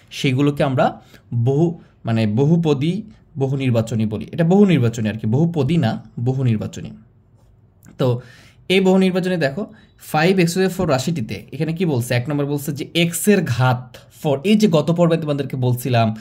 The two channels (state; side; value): identical; both; correlation 1.00